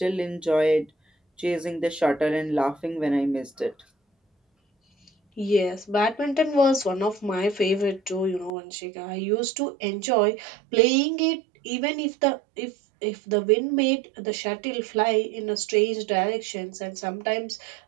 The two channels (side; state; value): left; drops out; at 8.5 s